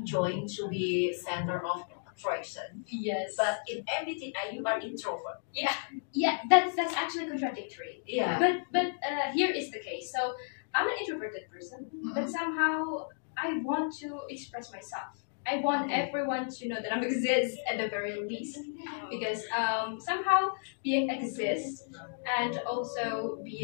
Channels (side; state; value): right; silent; digital silence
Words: to be center of attraction, Yes, but in MBTI you are introvert. yeah, that's actually contradictory. Yeah. But here is the case. So I'm an introverted person, but somehow I want to express myself. I want everyone to know that I exist at the very least, because somehow being exist and also